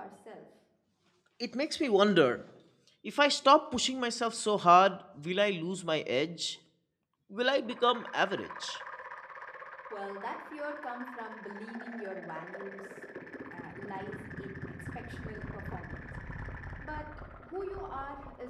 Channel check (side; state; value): both; identical; correlation 1.00